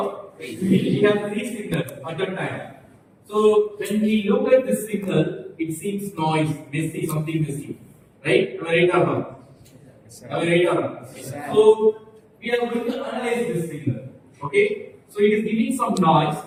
We have 3 signals at a time. So when we look at this signal, it seems noise, messy, something messy, right? Am I right or not? Am I right or not? So we are going to analyze this signal. Okay? So it is giving some noise.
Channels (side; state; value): both; identical; correlation 1.00